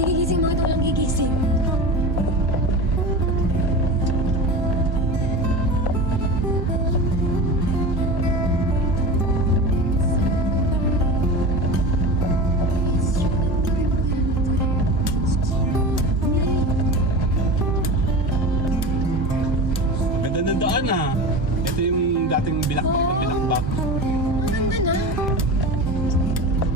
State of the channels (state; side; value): normal; both; correlation 0.29